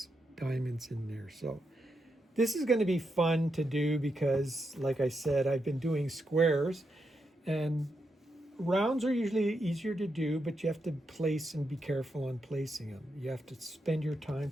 diamonds in there. So this is going to be fun to do because, like I said, I've been doing squares, and rounds are usually easier to do, but you have to place and be careful on placing them. You have to spend your time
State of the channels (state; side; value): normal; both; correlation 0.84